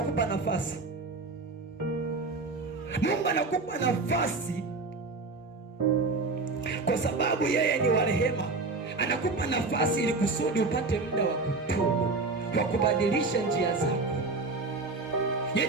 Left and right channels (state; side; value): quieter; left; 3.7 dB